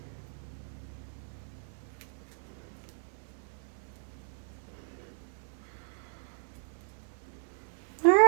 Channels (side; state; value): left; silent; 54 dB below the other